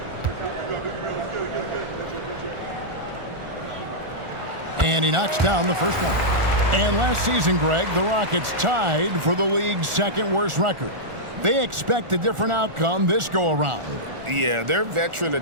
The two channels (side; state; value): left; late; 1.4 ms